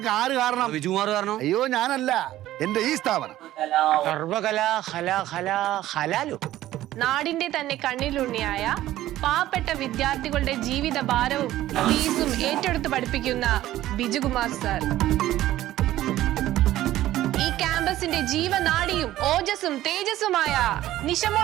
ആര് കാരണം? വിജുകുമാർ കാരണം. അയ്യോ ഞാനല്ല, എന്റെ ഈ സ്ഥാപനം. നാടിന്റെ തന്നെ കണ്ണിലുണ്ണിയായ പാവപ്പെട്ട വിദ്യാർത്ഥികളുടെ ജീവിത ഭാരവും ഫീസും ഏറ്റെടുത്ത് പഠിപ്പിക്കുന്ന ബിജുകുമാർ സർ ഈ ക്യാമ്പസിന്റെ ജീവനാഡിയും ഓജസ്സും തേജസ്സുമായ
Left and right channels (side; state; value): left; quieter; 14.4 dB